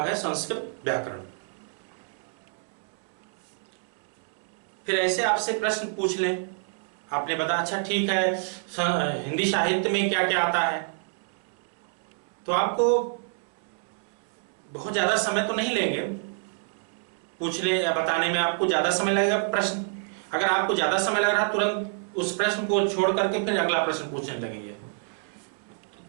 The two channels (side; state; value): left; silent; 60 dB below the other